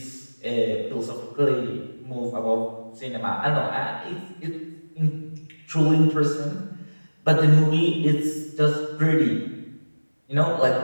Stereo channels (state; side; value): inverted; both; correlation -1.00